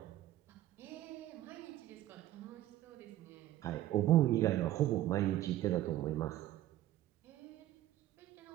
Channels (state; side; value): quieter; left; 13.9 dB